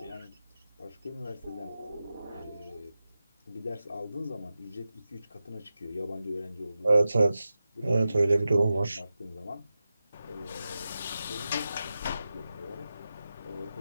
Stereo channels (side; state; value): both; inverted; correlation -0.92